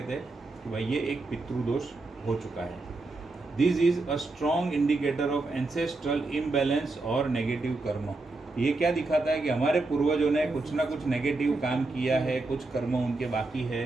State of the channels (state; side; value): quieter; left; 3.3 dB